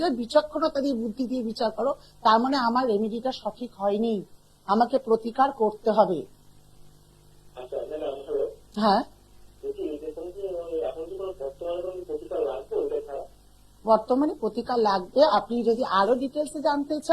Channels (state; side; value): identical; both; correlation 1.00